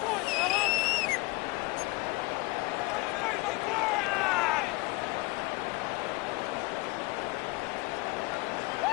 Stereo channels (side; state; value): right; quieter; 24.2 dB